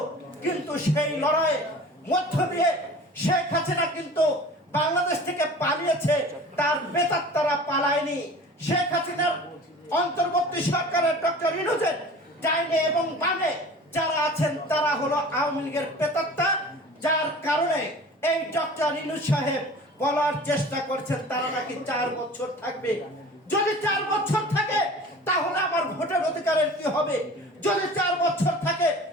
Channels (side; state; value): both; normal; correlation 0.42